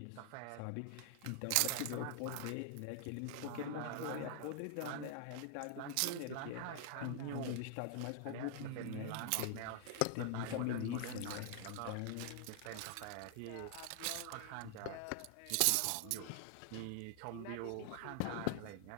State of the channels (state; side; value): different; both; correlation 0.00